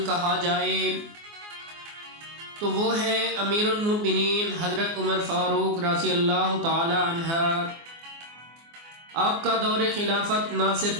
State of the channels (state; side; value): late; left; 24 ms